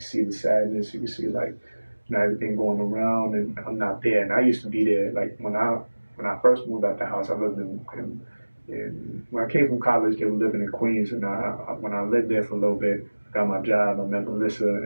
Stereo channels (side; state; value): both; inverted; correlation -1.00